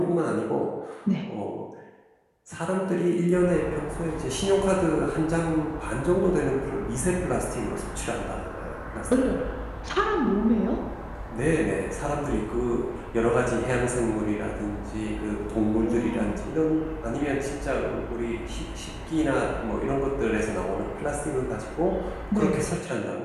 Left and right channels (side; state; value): both; identical; correlation 1.00